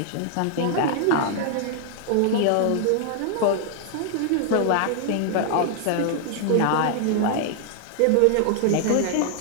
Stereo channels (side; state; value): both; different; correlation 0.00